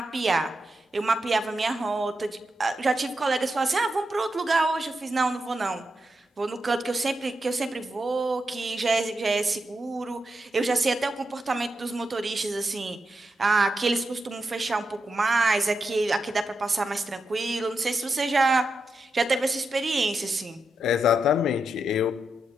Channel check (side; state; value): both; normal; correlation 0.86